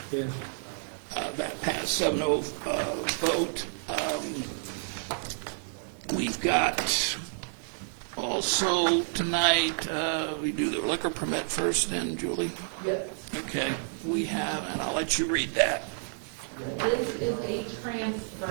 Yes. That passed 7-0 vote. We've got also tonight, we do the liquor permit first then, Julie? Yes. Okay, we have, and I'll let you read that. This is a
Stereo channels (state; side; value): silent; left; 58 dB below the other